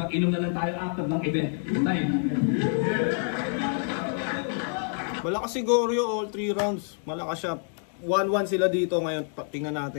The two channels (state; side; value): silent; right; 60 dB below the other